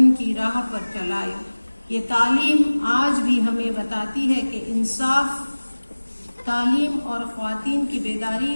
کی راہ پر چلایا۔ یہ تعلیم آج بھی ہمیں بتاتی ہے کہ انصاف، تعلیم اور خواتین کی بیداری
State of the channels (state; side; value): inverted; both; correlation -1.00